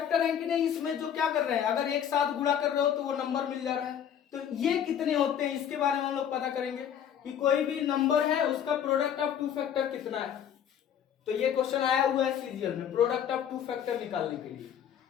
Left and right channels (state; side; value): quieter; right; 9.1 dB